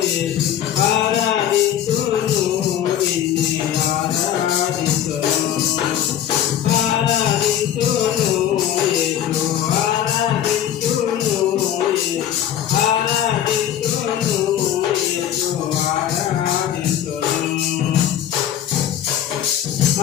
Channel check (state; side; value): quieter; right; 10.6 dB